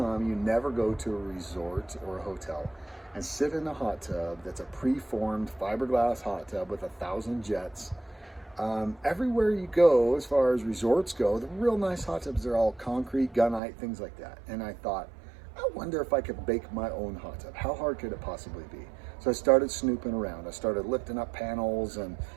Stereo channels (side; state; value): left; drops out; at 13.6 s